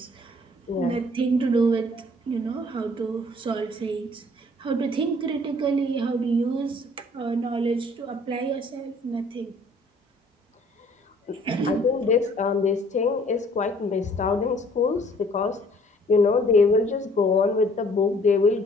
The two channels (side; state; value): both; normal; correlation 0.57